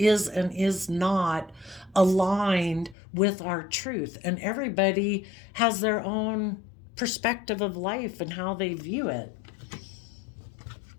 and is not aligned with our truth. And everybody has their own perspective of life and how they view it.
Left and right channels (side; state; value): right; drops out; at 3.0 s